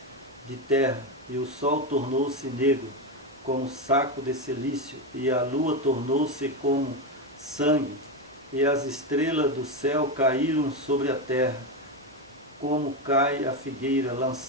de terra, e o sol tornou-se negro, como saco de cilício, e a lua tornou-se como sangue, e as estrelas do céu caíram sobre a terra, como cai a figueira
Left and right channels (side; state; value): both; normal; correlation 0.13